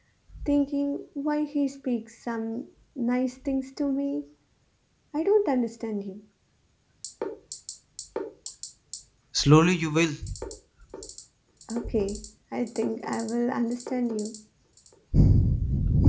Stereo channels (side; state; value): both; identical; correlation 1.00